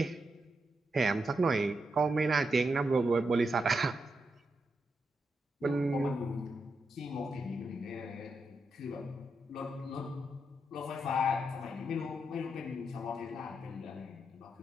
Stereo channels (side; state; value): both; normal; correlation 0.84